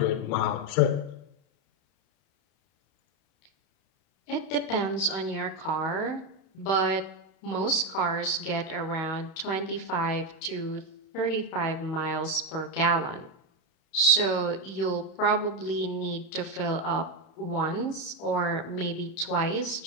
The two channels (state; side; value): late; right; 31 ms